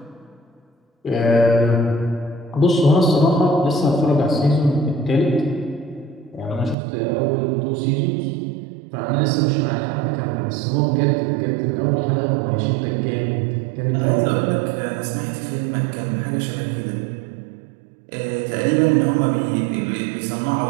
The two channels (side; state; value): left; drops out; at 6.8 s